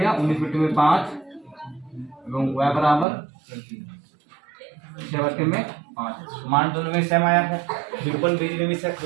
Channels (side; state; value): left; drops out; at 3.1 s